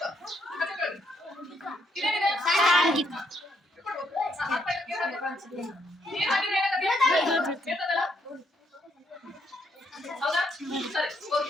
ಇದೇನಿದೆ ನೀರು ಹಾಕಿದ್ರೆ ಏನಾಗುತ್ತೆ ಬೀಳ್ತದಲ್ಲ ಹೌದಾ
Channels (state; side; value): normal; both; correlation 0.74